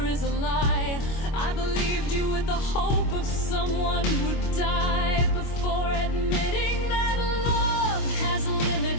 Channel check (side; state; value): right; late; 25 ms